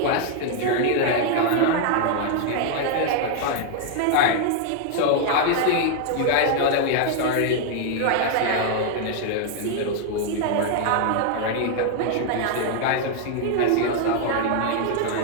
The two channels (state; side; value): different; both; correlation 0.00